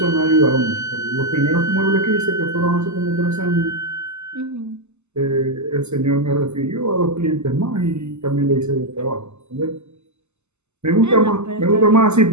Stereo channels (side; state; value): left; late; 0.82 ms